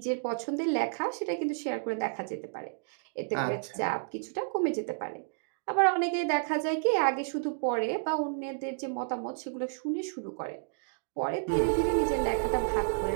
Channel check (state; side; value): silent; left; digital silence